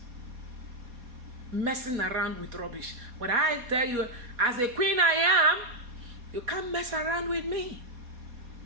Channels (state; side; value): late; left; 4.2 ms